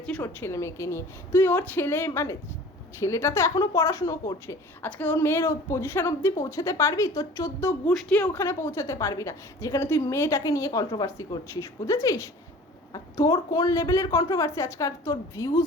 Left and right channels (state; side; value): normal; both; correlation 0.44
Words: ওর ছেলে মেয়েকে নিয়ে। তুই ওর ছেলে মানে ছেলেটা তো এখনো পড়াশুনো করছে, আজকে ওর মেয়ের পজিশন অবধি পৌঁছাতে পারবি? তোর 14 গোষ্ঠী ওখানে পৌঁছাতে পারবি না যেখানে তুই মেয়েটাকে নিয়ে কন্ট্রোভার্সি করছিস, বুঝেছিস? আর তোর কোন লেভেলের কন্ট্রোভার্সি, আজকাল তোর